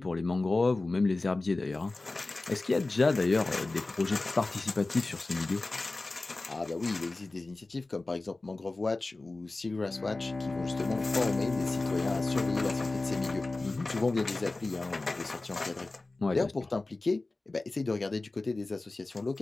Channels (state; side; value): quieter; right; 3.2 dB